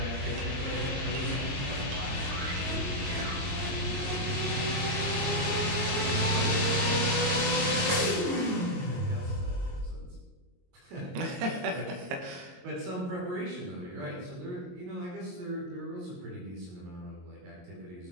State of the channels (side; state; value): left; late; 22 ms